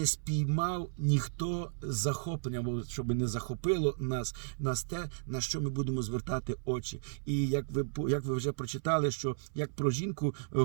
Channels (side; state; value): left; silent; 55 dB below the other